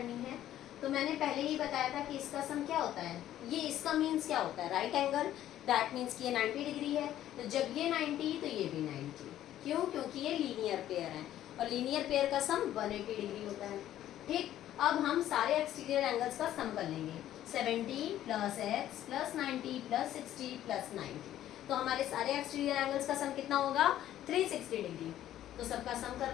है। तो मैंने पहले ही बताया था कि इसका सम क्या होता है, ये इसका मीन्स क्या होता है? Right angle. दैट मीन्स कि ये 90 डिग्री है। तो जब ये 90 तो ये भी 90। क्यों? क्योंकि ये लीनियर पेयर है और लीनियर पेयर का सम 180 डिग्री होता है। ठीक, अब हम सारे एक्सटीरियर एंगल्स का सम कर लेंगे। 70 plus x plus 90 plus 60 plus 90। तो हमारे सारे एक्सटीरियर एंगल्स का सम कितना होगा? 360 डिग्री। तो सबका सम कर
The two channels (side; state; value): right; quieter; 12.4 dB